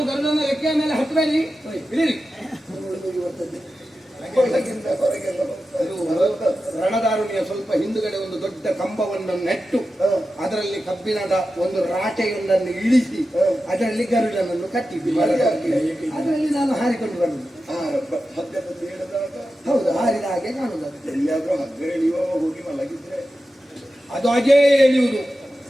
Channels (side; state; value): both; normal; correlation 0.92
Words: ಗರುಡನ ರೆಕ್ಕೆಯ ಮೇಲೆ ಹತ್ತಬೇಡಿ, ಇಳಿರಿ. ಹೊರಗೆಲ್ಲ ರಣದಾರುಣಿಯ ಸ್ವಲ್ಪ ಹಿಂದುಗಡೆ ಒಂದು ದೊಡ್ಡ ಕಂಬವನ್ನು ನೆಟ್ಟು ಅದರಲ್ಲಿ ಕಬ್ಬಿಣದ ಒಂದು ರಾಟೆಯೊಂದನ್ನು ಇಳಿಸಿ ಅದರಲ್ಲಿ ಗರುಡನನ್ನು ಕಟ್ಟಿದ್ದು. ಅದರಲ್ಲಿ ನಾನು ಹಾರಿಕೊಂಡು ಬರುವುದು. ಹಗ್ಗದಲ್ಲಿ ಹೇಳಿದಾಗ ಹೌದು, ಹಾರಿದ ಹಾಗೆ ಕಾಣುವುದು. ಎಲ್ಲಿಯಾದ್ರೂ ಹಗ್ಗ ಎಳೆಯುವ ಹೋಗಿ ಮಲಗಿದ್ರೆ ಅದು ಹಾಗೇ ಎಳೆಯುವುದು.